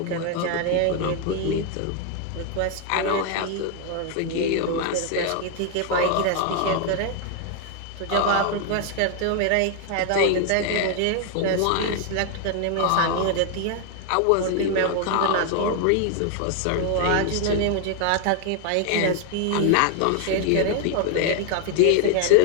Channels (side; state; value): both; different; correlation 0.00